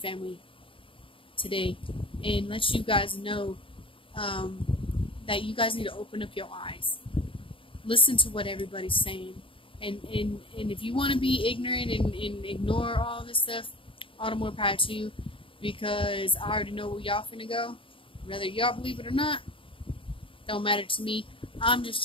today and let you guys know that you guys need to open up your eyes. Listen to what everybody's saying. And if you want to be ignorant and ignore all this stuff, all the more power to you, because I already know where y'all finna go. Whether y'all believe it or not, don't matter to me. I'm just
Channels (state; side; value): late; right; 0.25 ms